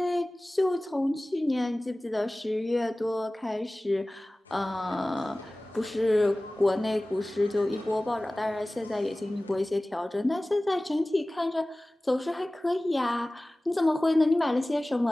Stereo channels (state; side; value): normal; both; correlation 0.98